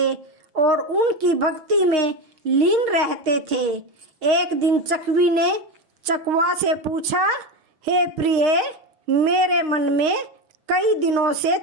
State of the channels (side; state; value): left; late; 6.4 ms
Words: और उनकी भक्ति में लीन रहते थे। एक दिन चकवी ने चकवा से पूछा, हे प्रिय, मेरे मन में कई दिनों से